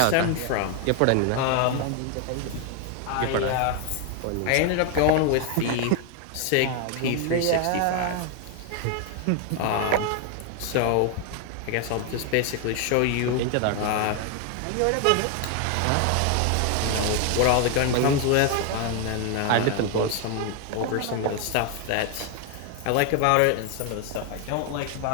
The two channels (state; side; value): different; both; correlation 0.01